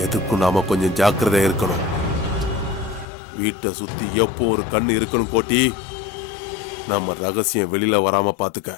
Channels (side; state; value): right; drops out; at 3.1 s